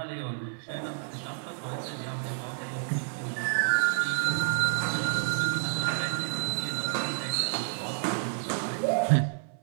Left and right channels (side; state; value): left; silent; 58 dB below the other